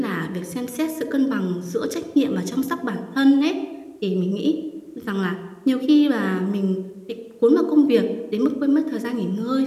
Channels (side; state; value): both; identical; correlation 1.00